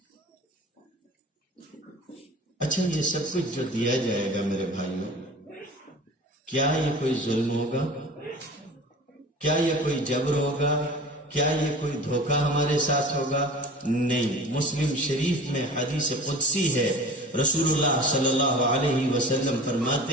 اچھا، یہ سب کچھ جو دیا جائے گا میرے بھائیوں، کیا یہ کوئی ظلم ہوگا؟ کیا یہ کوئی جبر ہوگا؟ کیا یہ کوئی دھوکہ ہمارے ساتھ ہوگا؟ نہیں۔ مسلم شریف میں حدیث قدسی ہے، رسول اللہ صلی اللہ علیہ وسلم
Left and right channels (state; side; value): normal; both; correlation 0.39